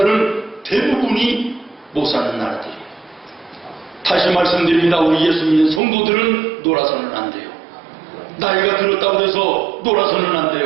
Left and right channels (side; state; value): left; drops out; at 5.8 s